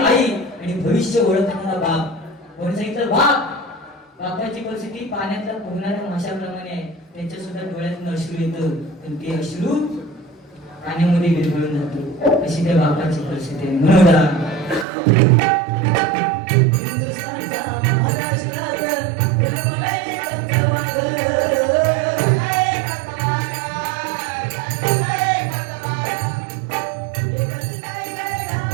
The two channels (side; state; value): left; drops out; at 14.9 s